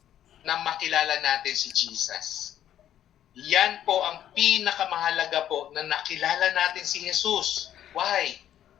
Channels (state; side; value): quieter; right; 11.0 dB